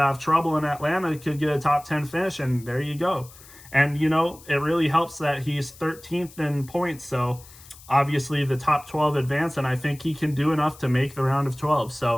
of trouble in Atlanta, he could get a top 10 finish, and there you go. And, it really helps that he's 13th in points. So obviously the top 12 advance, and I think he can do enough to make the round of 12.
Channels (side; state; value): left; noise; hiss, 21 dB below the sound